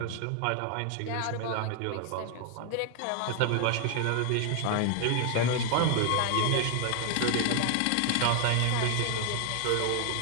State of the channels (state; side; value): different; both; correlation 0.00